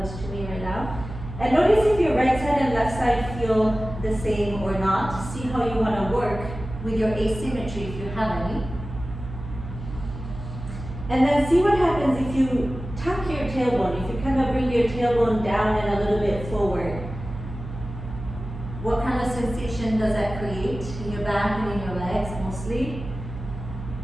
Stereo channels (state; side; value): noise; right; hum, 10 dB below the sound